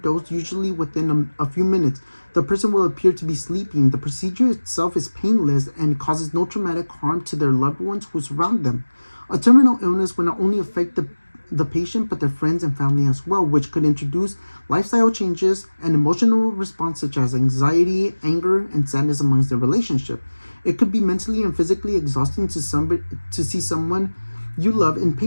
usually within a few minutes. The person will appear to be sleeping. The procedure itself is painless and causes no traumatic harm to their loved ones who surround them. A terminal illness will not only affect the patient, but their friends and family as well, which could introduce lifestyle changes and emotional response such as anxiety, anger, and sadness amongst their relationship. It could be mentally and physically exhausting to see someone you love in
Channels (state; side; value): inverted; both; correlation -1.00